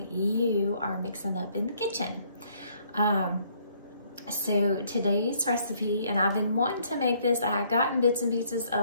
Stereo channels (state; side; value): inverted; both; correlation -0.65